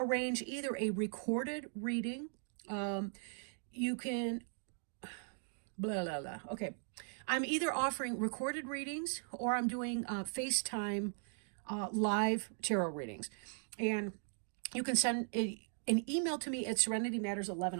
either a recorded reading. You can Okay, I'm either offering recorded readings or I'm doing FaceTime live tarot readings. And you can send an email to me at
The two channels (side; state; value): left; silent; 52 dB below the other